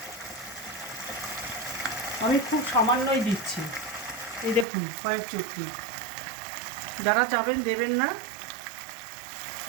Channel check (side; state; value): left; drops out; at 4.7 s